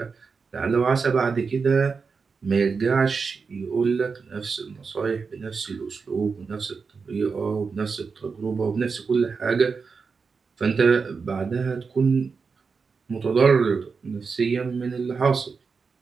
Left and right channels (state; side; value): quieter; left; 5.1 dB